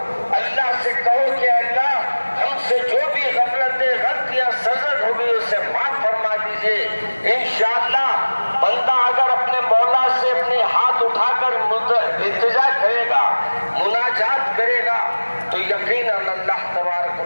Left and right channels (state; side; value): inverted; both; correlation -1.00